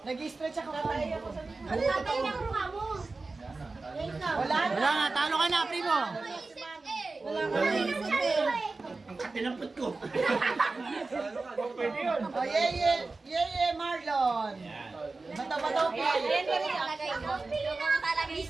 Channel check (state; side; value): quieter; left; 3.6 dB